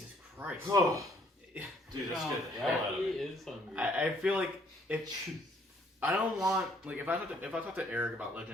Christ! Oh, dude, that's good. Yeah, he is hungry. I feel like I don't want like if I talk to Eric about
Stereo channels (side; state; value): both; normal; correlation 0.64